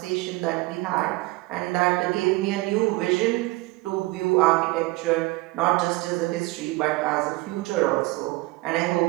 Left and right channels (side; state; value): left; quieter; 21.8 dB